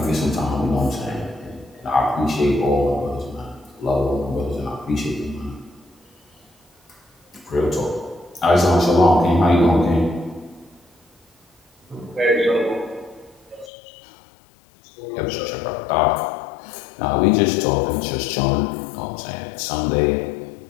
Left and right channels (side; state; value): right; drops out; at 13.7 s